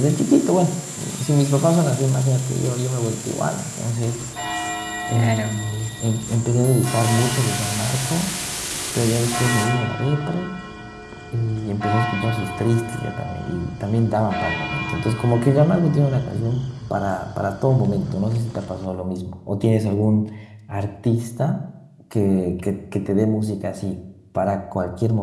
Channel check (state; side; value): identical; both; correlation 1.00